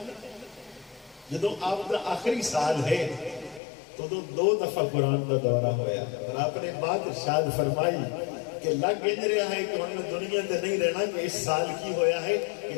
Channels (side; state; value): right; drops out; at 3.6 s